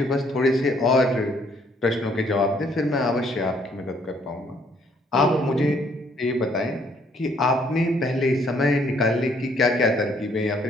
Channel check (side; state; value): both; normal; correlation 0.65